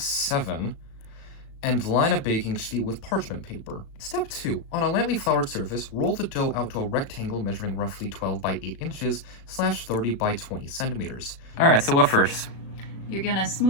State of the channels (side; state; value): right; late; 36 ms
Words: 7 and line a baking sheet with parchment paper. Step 2. On a lightly floured surface, roll the dough out to a rectangle measuring roughly 12 by 8 inches / 30 by 20 centimeters. Alright, so what first? You're gonna